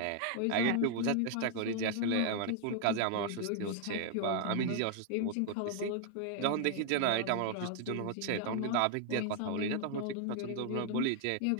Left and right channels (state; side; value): different; both; correlation 0.00